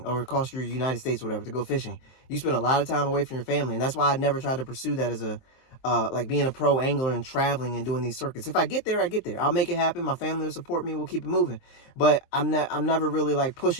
or across your United States or whatever to go fishing. You spend a lot of time away from your family, and that's why I never tried to pursue that as a like being a pro angler and traveling and doing these circuits. If I get there, I get there. I'll make it happen. My family will support me. We'll keep it moving. But I'm never really like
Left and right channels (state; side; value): late; right; 23 ms